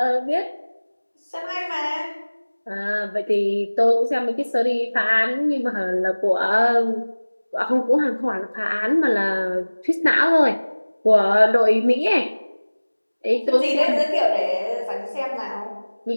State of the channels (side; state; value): both; inverted; correlation -1.00